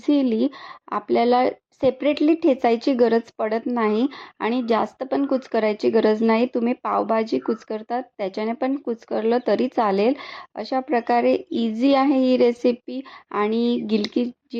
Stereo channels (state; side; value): identical; both; correlation 1.00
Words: आपल्याला सेपरेटली ठेचायची गरज पडत नाही आणि जास्त पण कुस्करायची गरज नाही. तुम्ही पावभाजी कुस्करतात त्याच्याने पण कुस्करलं तरी चालेल. अशा प्रकारे इझी आहे ही रेसिपी. आणि गिलकी